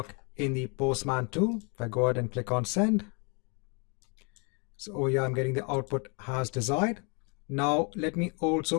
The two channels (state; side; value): quieter; right; 34.1 dB